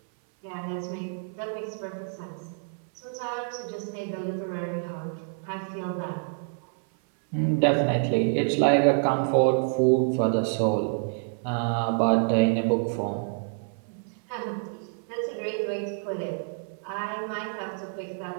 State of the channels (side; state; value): left; silent; 60 dB below the other